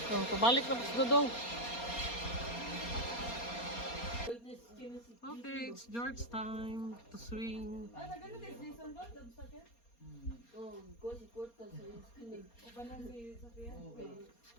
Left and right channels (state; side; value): late; right; 4.3 ms